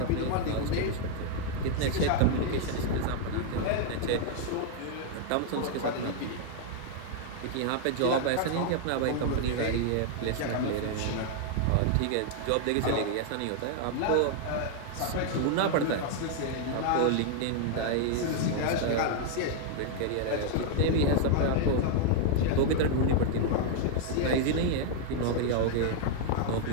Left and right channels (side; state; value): both; different; correlation 0.00